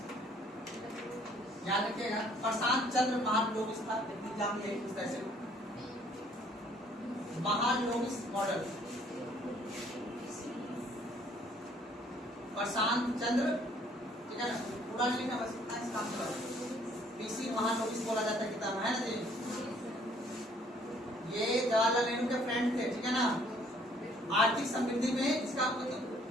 याद रखिएगा। प्रशांत चंद्र महालनोबिस था, एग्जाम यही पूछता है। महालनोबिस मॉडल, प्रशांत चंद्र, ठीक है ना, पूरा नहीं लिखना, बस इतना इस काम से पीसी महालनोबिस बोला जाता है किताब, है ना जी। ये जवाहरलाल नेहरू के फ्रेंड थे, ठीक है ना। आर्थिक समृद्धि में इसका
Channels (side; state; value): both; normal; correlation 0.61